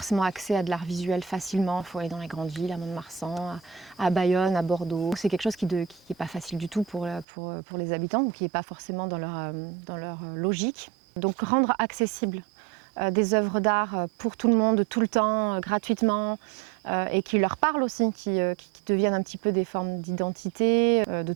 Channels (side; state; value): left; drops out; at 7.2 s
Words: accès à de l'art visuel facilement. Il faut aller dans les grandes villes, à Mont-de-Marsan, à Bayonne, à Bordeaux. C'est quelque chose qui n'est pas facile du tout pour les habitants, ou qui n'est pas forcément dans leur logique. Donc rendre accessible des œuvres d'art pour tout le monde, tout le temps, gratuitement, et qui leur parlent aussi, qui deviennent un petit peu des formes d'identité, de